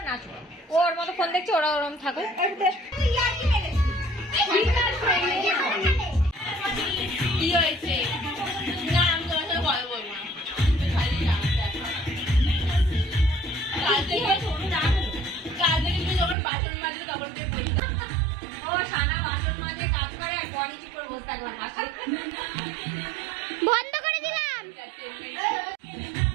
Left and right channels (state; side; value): drops out; left; at 16.4 s